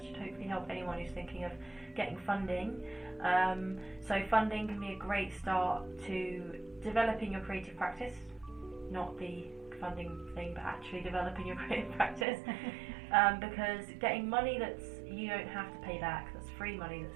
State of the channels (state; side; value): drops out; left; at 12.2 s